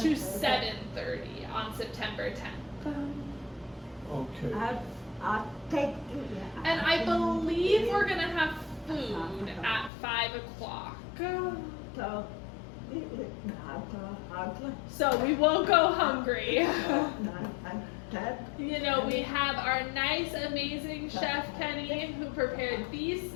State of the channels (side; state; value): right; drops out; at 9.9 s